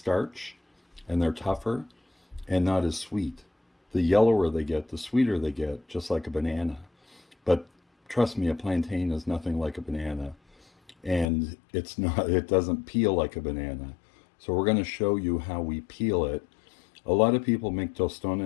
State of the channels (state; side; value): drops out; right; at 11.2 s